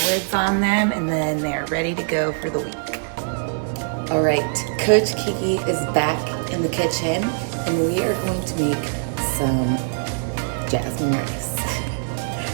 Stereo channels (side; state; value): left; silent; digital silence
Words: lids on them, and then they're ready to go for the week. All right, Coach Kiki is back in the kitchen, and we are going to make some jasmine rice.